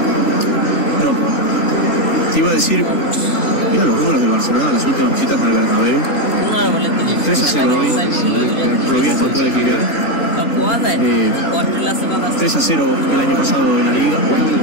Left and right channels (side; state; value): right; late; 3.4 ms